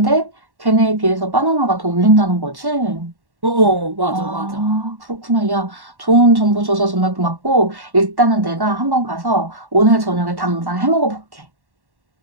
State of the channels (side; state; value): left; late; 1.1 ms